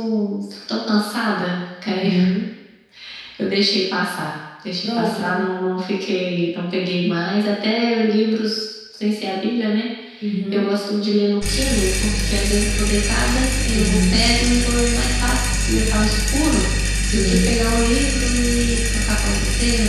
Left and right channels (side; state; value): both; identical; correlation 1.00